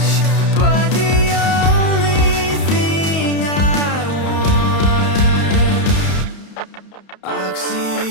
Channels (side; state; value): right; late; 31 ms